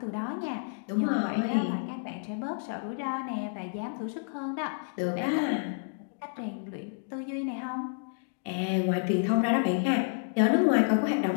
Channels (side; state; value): right; silent; digital silence